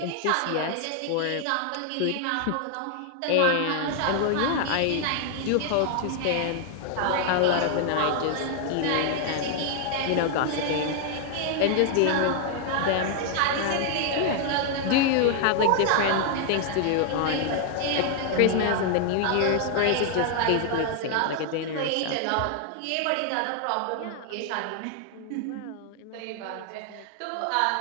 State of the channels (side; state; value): both; different; correlation 0.00